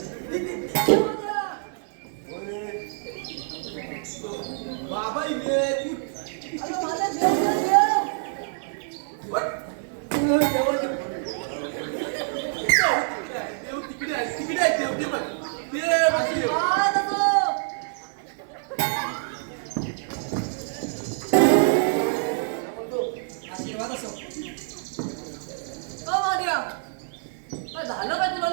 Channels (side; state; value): left; silent; digital silence